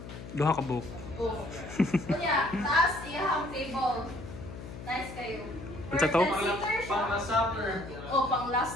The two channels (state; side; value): noise; left; hum, 12 dB below the sound